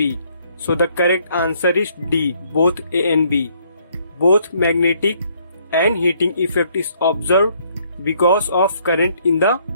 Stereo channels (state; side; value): inverted; both; correlation -0.67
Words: So the correct answer is D. Both A and B. Both magnetic and heating effect is observed because of current in the